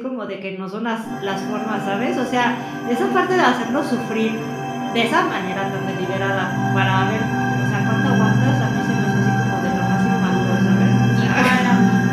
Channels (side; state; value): both; identical; correlation 1.00